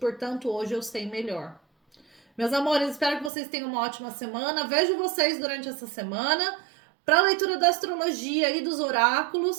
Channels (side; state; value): left; drops out; at 3.3 s